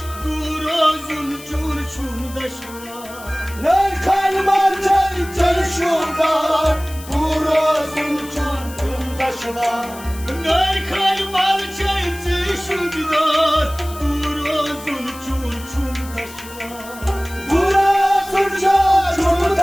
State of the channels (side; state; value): left; noise; hiss, 17 dB below the sound